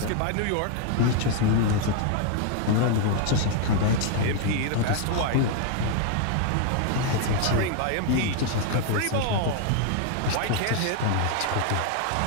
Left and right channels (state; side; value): different; both; correlation 0.00